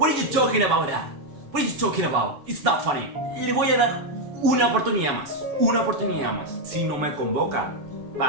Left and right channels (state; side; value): late; left; 7.1 ms